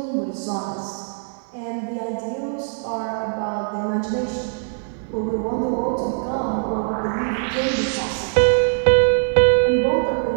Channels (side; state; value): left; silent; digital silence